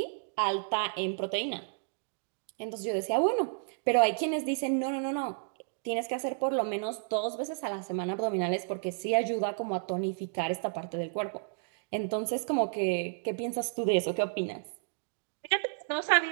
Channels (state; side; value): silent; left; digital silence